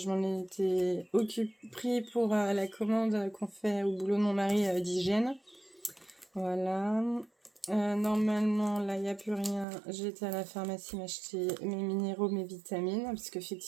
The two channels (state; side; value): drops out; left; at 9.7 s